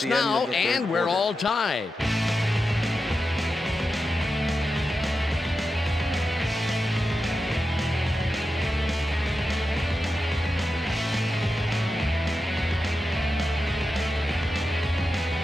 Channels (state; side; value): normal; both; correlation 0.90